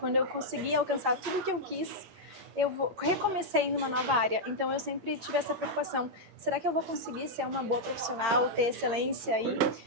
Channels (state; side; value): late; left; 11 ms